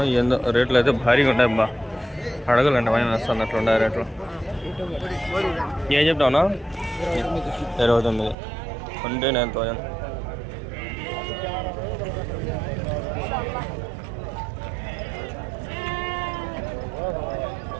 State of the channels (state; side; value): drops out; left; at 8.3 s